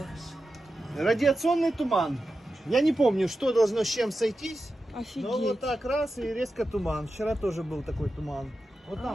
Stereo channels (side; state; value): both; normal; correlation 0.91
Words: Радиационный туман. Я не помню, что должно с чем сойтись. Офигеть. Но вот так раз и резко туман. Вчера тоже был такой туман. Вот